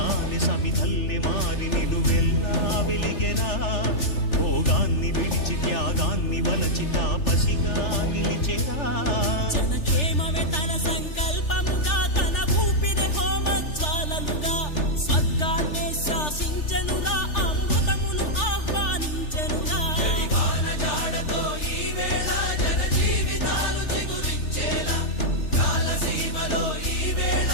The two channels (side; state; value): right; late; 3.4 ms